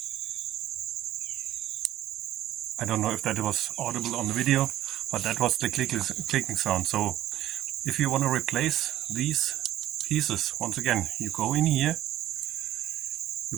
I don't know if that was audible on the video, but that was the clicking sound. So if you want to replace these pieces, once again, you go in here,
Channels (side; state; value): left; quieter; 13.5 dB